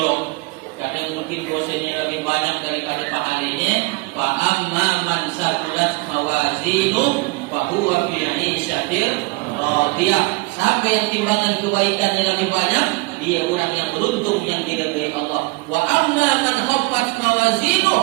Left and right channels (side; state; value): left; quieter; 24.4 dB